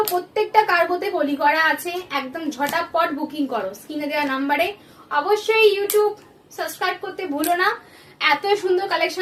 প্রত্যেকটা কার্গোতে কলি করা আছে, একদম ঝটাপট বুকিং করো স্ক্রিনে দেওয়া নাম্বারে। অবশ্যই ইউটিউব সাবস্ক্রাইব করতে ভুলো না, এত সুন্দর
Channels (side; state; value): both; identical; correlation 1.00